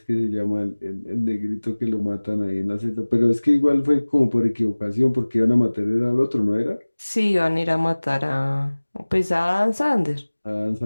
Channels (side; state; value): both; inverted; correlation -1.00